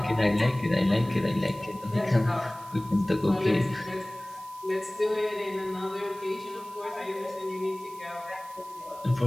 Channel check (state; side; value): noise; right; hiss, 21 dB below the sound